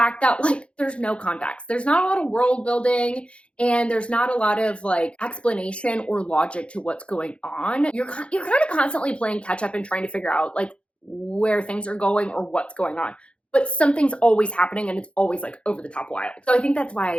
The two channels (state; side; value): late; right; 0.059 ms